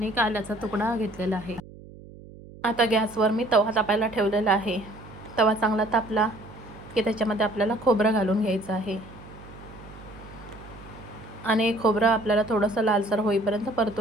एक आल्याचा तुकडा घेतलेला आहे. आता गॅसवर मी तवा तापायला ठेवलेला आहे. तवा चांगला तापला की त्याच्यामध्ये आपल्याला खोबरं घालून घ्यायचं आहे आणि खोबरं आपल्याला थोडंसं लालसर होईपर्यंत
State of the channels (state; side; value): noise; right; hum, 18 dB below the sound